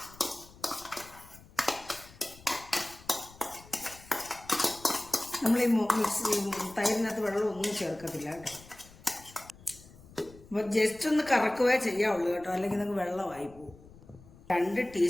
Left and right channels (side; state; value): left; noise; rumble, 22 dB below the sound